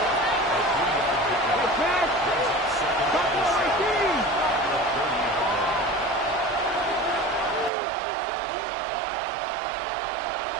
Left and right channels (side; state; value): left; drops out; at 7.7 s